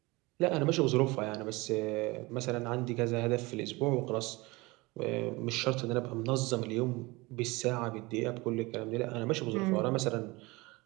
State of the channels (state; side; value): quieter; left; 23.4 dB